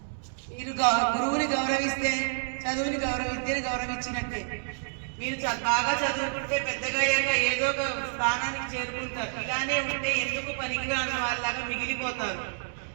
మీరు గురువుని గౌరవిస్తే చదువుని విద్యని గౌరవించినట్టే. మీరు బాగా చదువుకుంటే పెద్దగా అయ్యాక ఏదో ఒక స్థానానికి చేరుకుంటారు. ఇలానే ఉంటే ఎందుకు పనికిరాని వాళ్ళలాగా మిగిలిపోతారు.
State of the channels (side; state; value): left; silent; digital silence